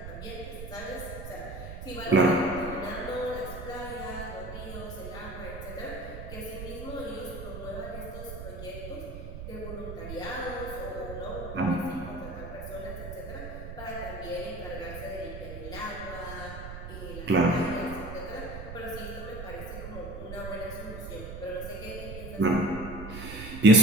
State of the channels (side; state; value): right; noise; rumble, 9 dB below the sound